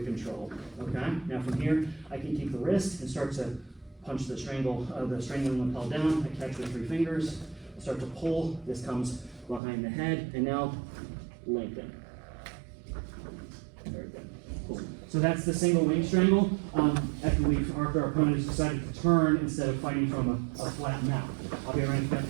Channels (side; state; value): left; drops out; at 9.6 s